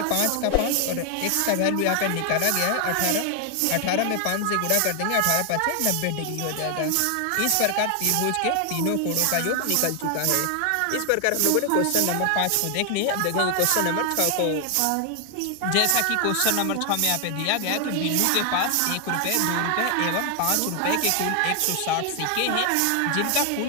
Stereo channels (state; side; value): different; both; correlation 0.00